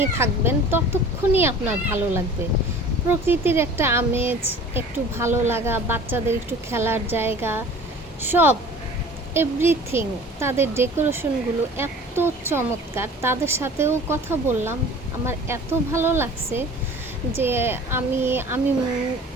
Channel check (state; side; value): normal; both; correlation 0.44